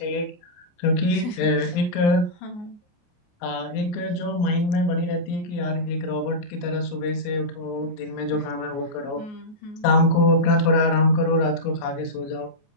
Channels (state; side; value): late; right; 29 ms